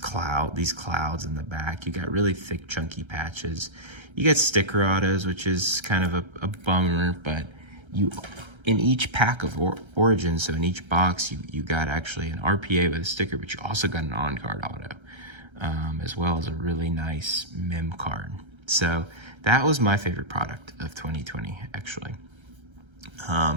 in the back. You got really thick, chunky patches. You get sticker autos, which is kind of a bummer, but in each pack of Origins, so in each box, you got actually an RPA with a sticker, but you also got an on-card auto, as well as a really nice mem card. So that was my favorite product of 2020, actually.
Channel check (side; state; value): left; late; 1.3 ms